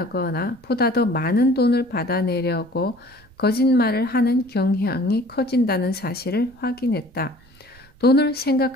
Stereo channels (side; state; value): right; noise; rumble, 27 dB below the sound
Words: 보다 더 많은 돈을 받아내려고 거짓말을 하는 경향이 커진다는 사실을 확인했다. 돈을